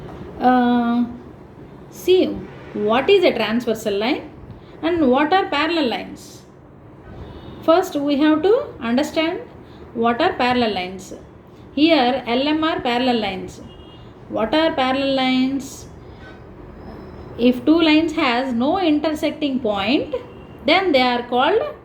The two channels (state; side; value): identical; both; correlation 1.00